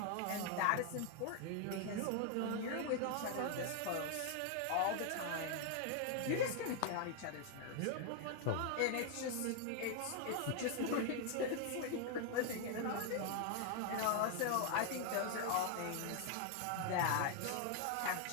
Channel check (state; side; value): different; both; correlation 0.00